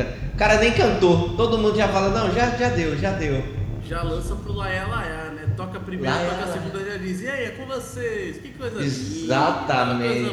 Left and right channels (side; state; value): both; identical; correlation 1.00